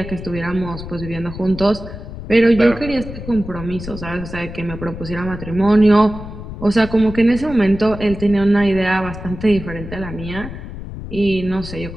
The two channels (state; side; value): noise; left; rumble, 11 dB below the sound